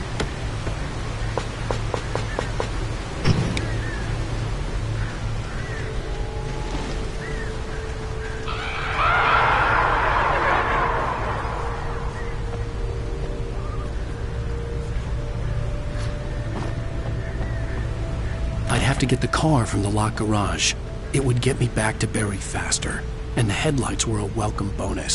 I'd have to get the car from the locked garage. It would get me back to Barry faster, and the headlights were a welcome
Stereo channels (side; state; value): both; identical; correlation 1.00